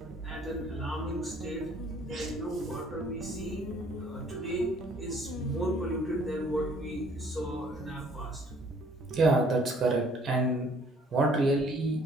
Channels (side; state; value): both; normal; correlation 0.59